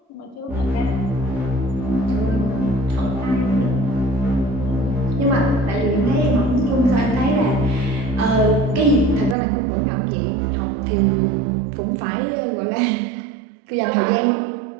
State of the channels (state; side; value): drops out; left; at 9.3 s